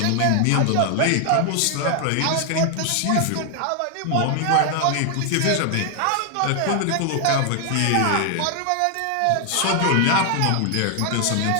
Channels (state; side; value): different; both; correlation 0.00